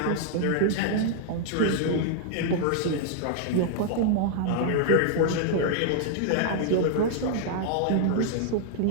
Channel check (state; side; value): different; both; correlation -0.01